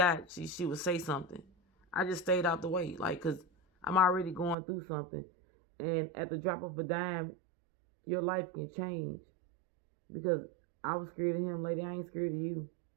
she would say something. I just stayed out the way, like, because I'm already going through something. And at the drop of a dime, your life can change. Because I was scared of him, lady. I ain't scared of you.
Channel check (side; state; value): left; drops out; at 4.5 s